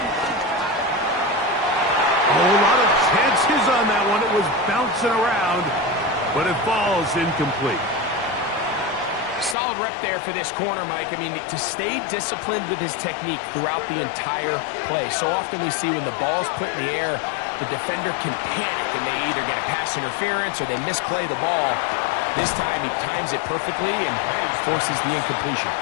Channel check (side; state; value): right; drops out; at 9.6 s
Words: A lot of chances on that one. It was bouncing around, but it falls incomplete. Solid rep there for this corner, Mike. I mean, to stay disciplined with his technique throughout the entire play. So often we see when the ball's put in the air, the defender can panic and they either get a pass interference or they misplay the ball. This time he times it perfectly and forces the incompletion.